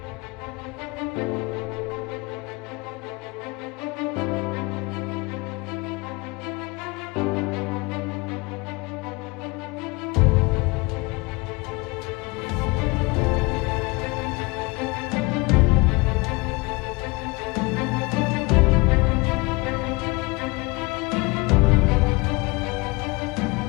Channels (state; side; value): quieter; right; 25.7 dB